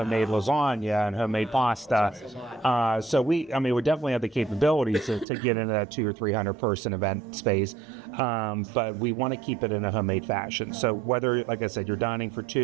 lasagna and homemade pasta. So we definitely have the capabilities to get into that 200 or 300 person event space, but we want to keep it in a homemade fashion. So whether, like I said, you're dining for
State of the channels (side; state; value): left; drops out; at 5.2 s